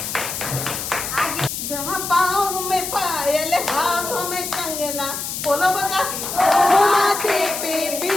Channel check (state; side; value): noise; left; hiss, 5 dB below the sound